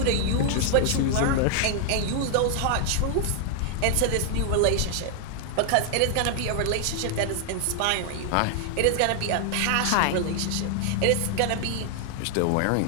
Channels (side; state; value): both; different; correlation 0.00